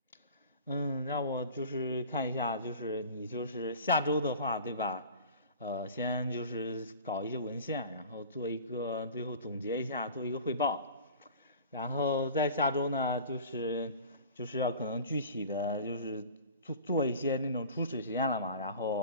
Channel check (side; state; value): both; inverted; correlation -0.41